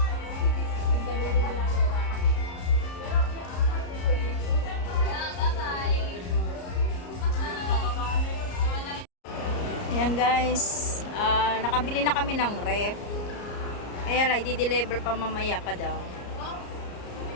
Ayan guys, nakabili na kami ng ref. Kaya lang, i-deliver pa mamaya pa daw.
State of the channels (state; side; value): late; right; 34 ms